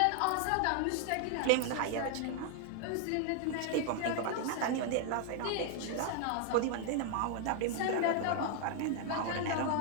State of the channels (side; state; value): both; different; correlation 0.00